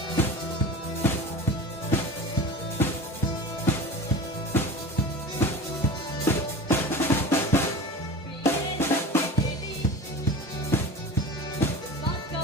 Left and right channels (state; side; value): normal; both; correlation 0.32